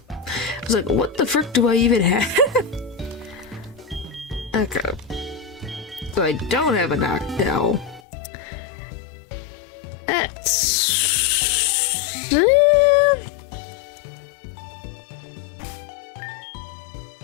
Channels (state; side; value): drops out; right; at 8.0 s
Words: I was like, what the frick do I even have? Okay. So I don't have a knockdown. That's...